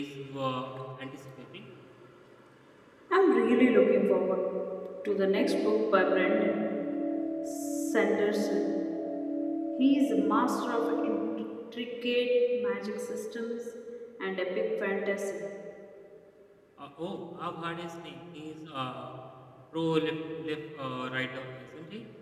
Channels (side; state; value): both; identical; correlation 1.00